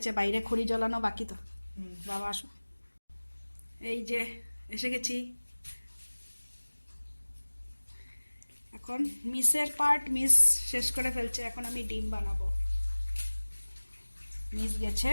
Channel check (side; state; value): both; inverted; correlation -1.00